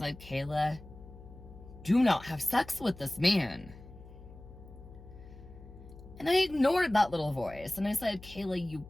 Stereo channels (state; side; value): noise; left; hum, 18 dB below the sound